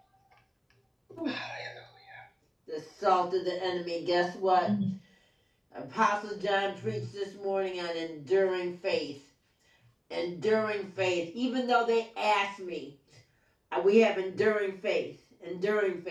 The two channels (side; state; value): both; identical; correlation 1.00